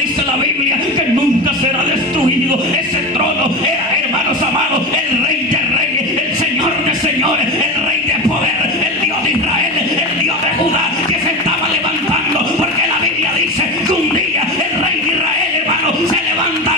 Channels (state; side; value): normal; both; correlation 0.23